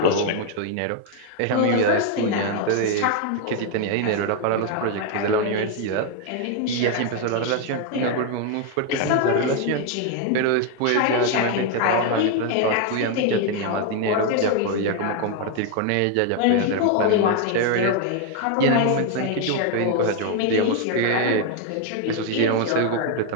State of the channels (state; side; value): different; both; correlation 0.01